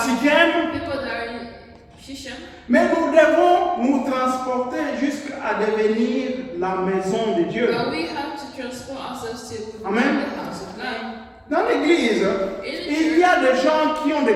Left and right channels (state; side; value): identical; both; correlation 1.00